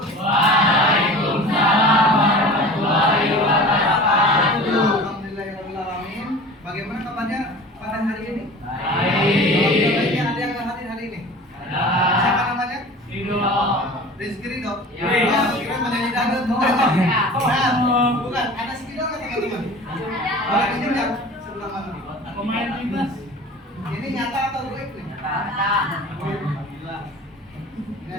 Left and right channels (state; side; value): normal; both; correlation 0.39